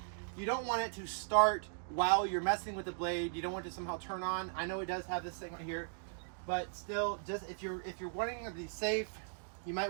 you don't want it to start while you're messing with the blade. You don't want it to somehow turn on. I know it does have this thing right here, but still, just if you're wanting to be safe, you might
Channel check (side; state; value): left; silent; digital silence